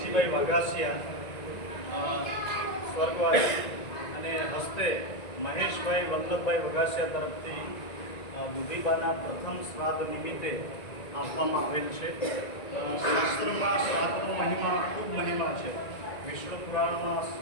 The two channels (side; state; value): right; late; 1.9 ms